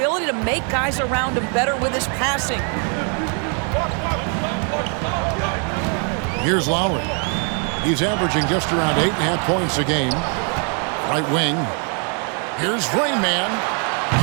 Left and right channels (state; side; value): quieter; left; 39.8 dB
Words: to make guys around him better with his passing. Here's Lowry. He's averaging just around 8.5 points a game. Right wing. Here's Rain Man.